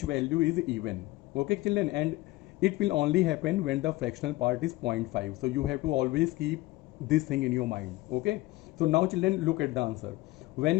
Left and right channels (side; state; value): right; quieter; 19.3 dB